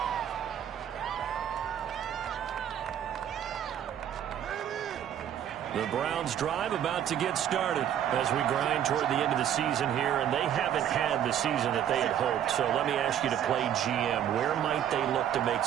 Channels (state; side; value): quieter; left; 10.1 dB